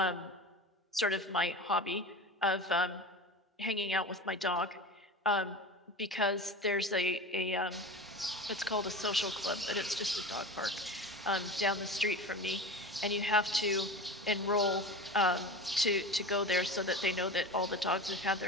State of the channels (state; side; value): normal; both; correlation 0.31